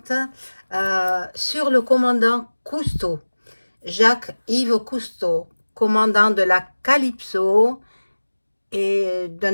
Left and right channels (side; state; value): both; inverted; correlation -1.00